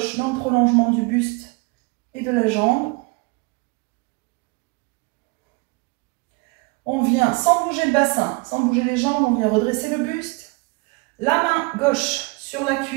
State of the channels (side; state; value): left; quieter; 27.4 dB